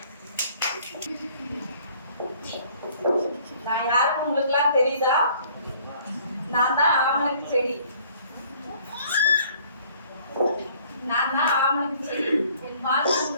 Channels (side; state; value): both; inverted; correlation -0.57